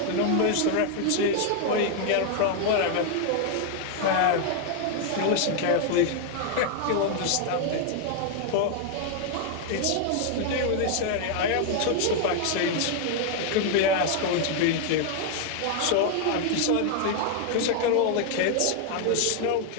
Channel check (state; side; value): different; both; correlation 0.00